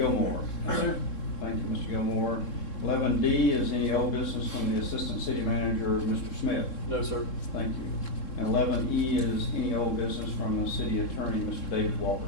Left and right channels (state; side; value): late; right; 3.7 ms